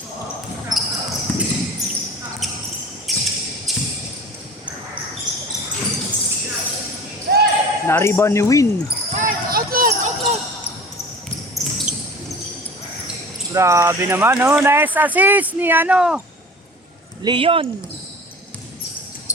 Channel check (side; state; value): both; normal; correlation 0.40